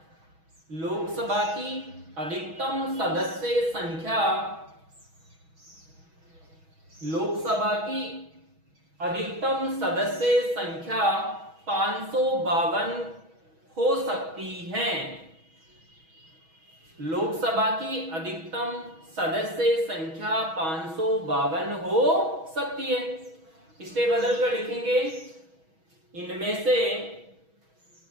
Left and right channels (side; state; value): left; late; 6.2 ms